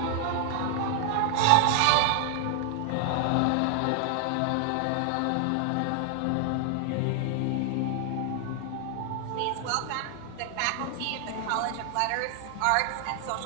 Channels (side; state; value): both; different; correlation 0.00